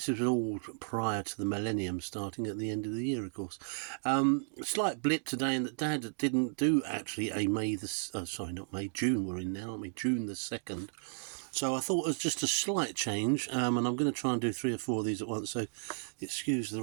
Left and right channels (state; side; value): silent; left; digital silence